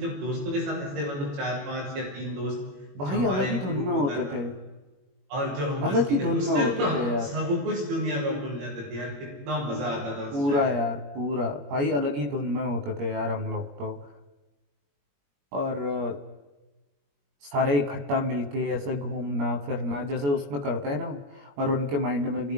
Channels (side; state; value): left; late; 21 ms